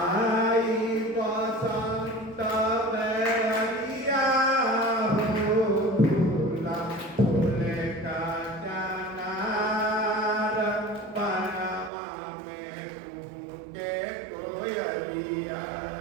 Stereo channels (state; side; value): drops out; left; at 11.9 s